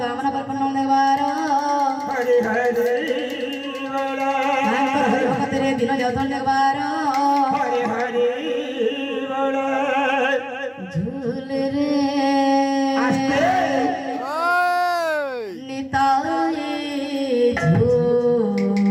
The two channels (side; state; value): both; identical; correlation 1.00